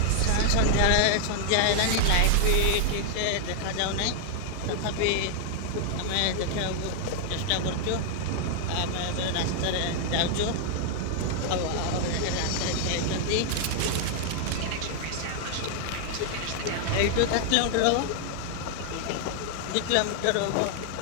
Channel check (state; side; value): different; both; correlation 0.00